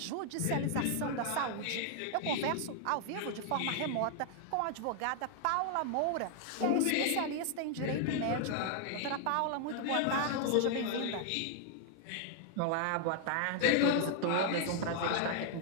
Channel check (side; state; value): both; different; correlation 0.00